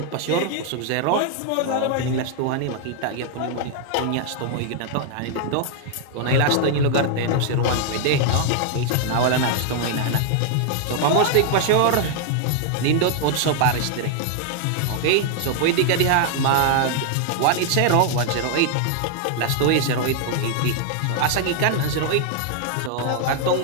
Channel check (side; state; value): both; different; correlation 0.00